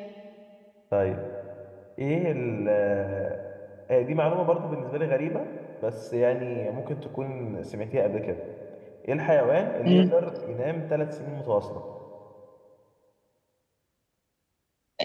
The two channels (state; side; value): identical; both; correlation 1.00